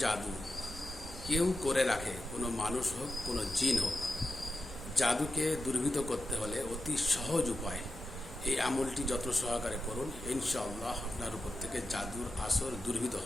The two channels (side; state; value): both; normal; correlation 0.91